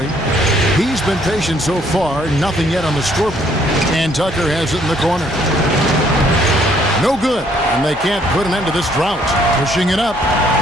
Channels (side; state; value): right; noise; hum, 19 dB below the sound